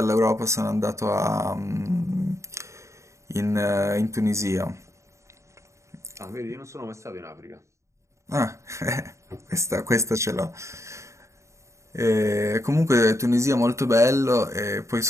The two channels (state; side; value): late; left; 0.14 ms